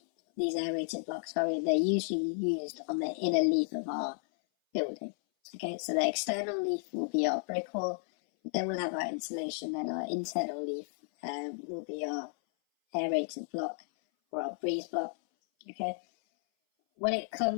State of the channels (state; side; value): silent; right; 56 dB below the other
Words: used on the inner leaf of our building. Okay, so the external leaf will be our brick wall, then we'll have our insulation, and our internal leaf will be our aerated block or our breeze block. Okay, when it